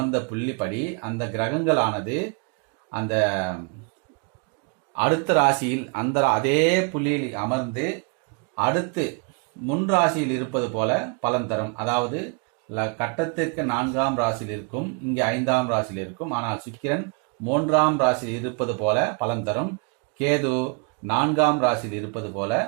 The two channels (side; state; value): left; quieter; 35.6 dB